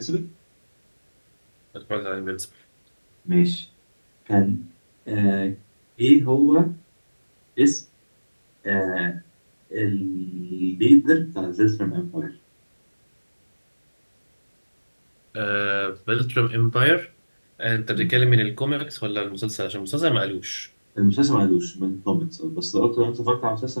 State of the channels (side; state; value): both; inverted; correlation -1.00